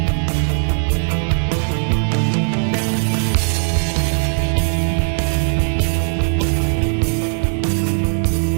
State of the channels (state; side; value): silent; left; digital silence